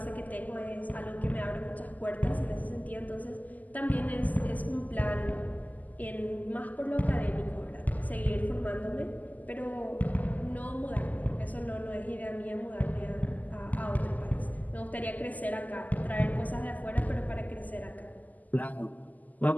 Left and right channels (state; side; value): late; right; 0.080 ms